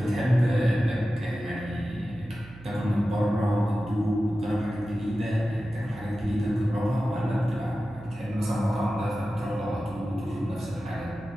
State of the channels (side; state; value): right; noise; hum, 18 dB below the sound